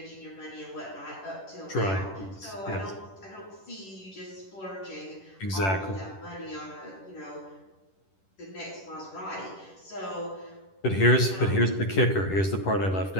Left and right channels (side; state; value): right; late; 10 ms